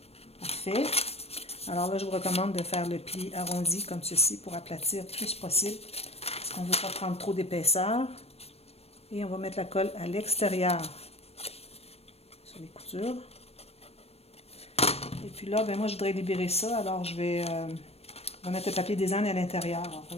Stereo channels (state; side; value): late; right; 0.29 ms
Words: Parfait. Alors là, je vous recommande de faire le pli arrondi comme ceci pour aplatir le plus possible. Parce qu'on ne veut pas prendre trop d'épaisseur. Et on va mettre la colle à l'extérieur sur les coutures. Et puis là, ben moi, je voudrais libérer ça. Alors, je vais mettre le papier design à l'intérieur.